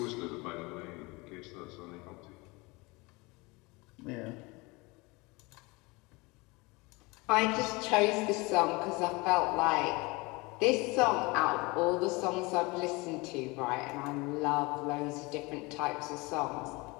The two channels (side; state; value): right; quieter; 25.1 dB